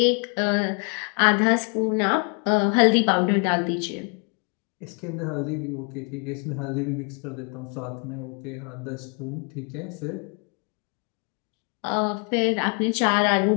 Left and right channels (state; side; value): quieter; right; 37.3 dB